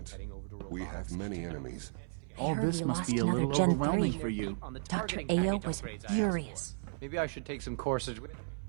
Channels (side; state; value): left; silent; 55 dB below the other